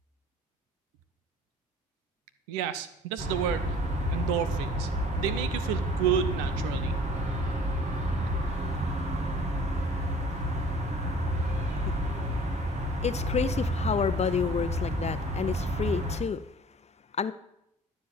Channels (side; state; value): both; normal; correlation 0.49